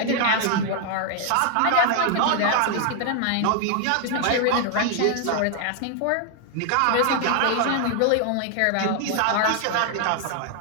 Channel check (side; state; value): both; different; correlation 0.00